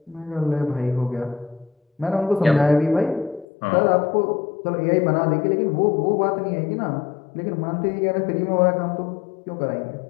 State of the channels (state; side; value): drops out; right; at 3.5 s